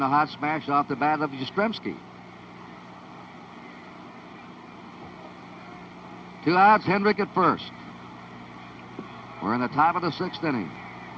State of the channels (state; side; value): identical; both; correlation 1.00